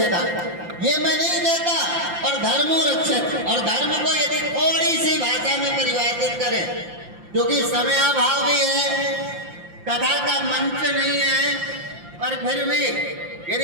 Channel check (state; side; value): late; left; 5.8 ms